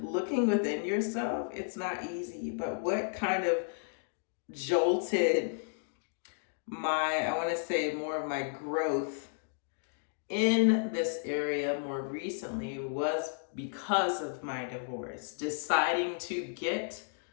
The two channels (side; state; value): right; silent; digital silence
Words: within yourself, it's not easy. But what kind of jolted I want to say more of my growth in this area more recently was because of my divorce. Deciding to get